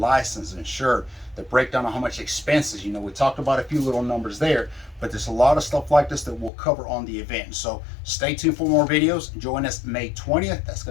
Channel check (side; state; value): right; drops out; at 6.5 s